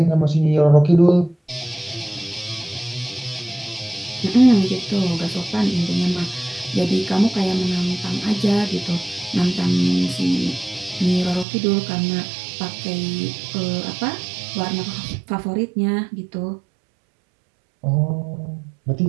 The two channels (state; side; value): drops out; left; at 11.5 s